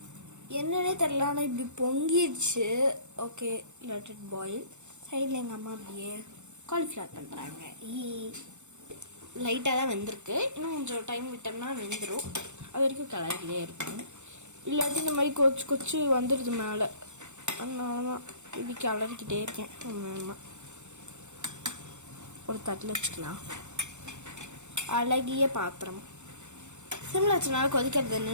என்னன்னே தெரியல, ஆனால் இப்படி பொங்கிடுச்சு. Okay, let it boil. சைடில் எங்கள் அம்மா அப்படியே காலிஃப்ளவர் பண்ணுறாங்க. லைட்டாக தான் வெந்திருக்கு. இன்னும் கொஞ்சம் டைம் விட்டோம்னா வெந்துடும். அது வரைக்கும் கலரிலே இருக்கும். இல்லாட்டி இந்த மாதிரி கொச்சு வந்துடுது மேலே. அதனால தான் இப்படி கலரிக்கிட்டே இருக்கேன். ஒரு தட்டில் வச்சுக்கலாம். அழகிய பாத்திரம். சிம்மில் வச்சனால கொதிக்கிறது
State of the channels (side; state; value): left; late; 0.84 ms